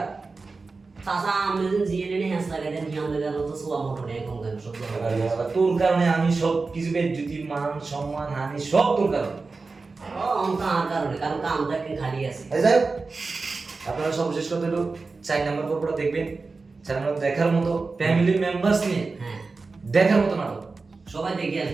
সাসা আমাদের জিএনএ নে হাস লাগাই দেন কি আমাদের কারণে তো সোয়া মোটর নেই কম কেন সব তোর কারণে আমি সব কিছু বেজ্জতি মান সম্মান হানি সব তোর কারণে কার কারণে কারণ কামটা কি খালি আছে যাই হোক আপনারা সর্বশেষ কথা হলো 4 নম্বর পর্বটা দেখবেন 4 নম্বর দেখার মতো ফ্যামিলি মেম্বারস নিয়ে হ্যাঁ দেখার মতো নাটক সবাই দেখে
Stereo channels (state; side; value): quieter; left; 4.0 dB